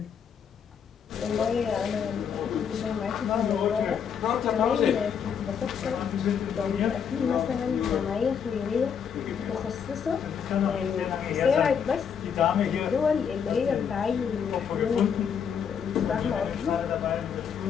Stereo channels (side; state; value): right; quieter; 7.4 dB